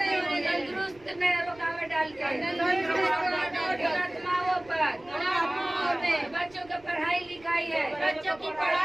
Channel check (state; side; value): noise; right; rumble, 26 dB below the sound